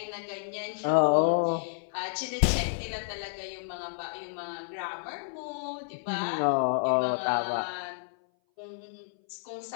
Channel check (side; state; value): right; silent; 58 dB below the other